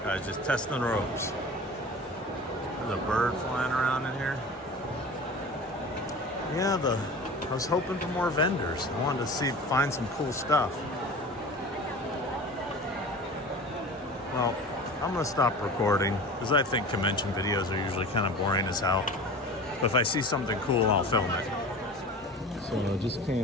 Guys, just testing the ropes. There's a bird flying around in here. Yeah, I was hoping for more vendors. I wanted to find some cool stuff. Well, I'm gonna stop recording because I think convention videos are usually kind of boring as hell. But if I see something cool, I'll film it. So I just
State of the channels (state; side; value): normal; both; correlation 0.37